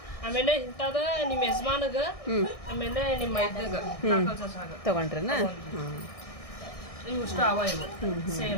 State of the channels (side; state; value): right; late; 1.6 ms